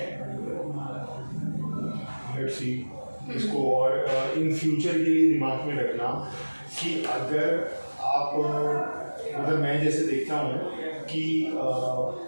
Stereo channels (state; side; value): inverted; both; correlation -1.00